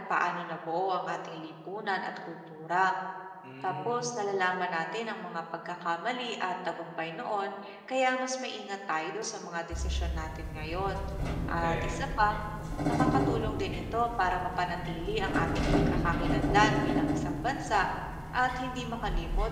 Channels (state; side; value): identical; both; correlation 1.00